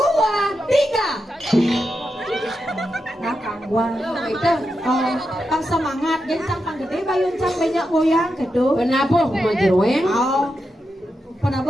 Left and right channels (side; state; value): both; normal; correlation 0.87